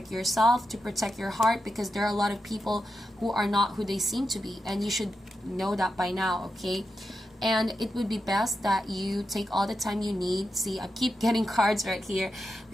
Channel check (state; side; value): normal; both; correlation 0.88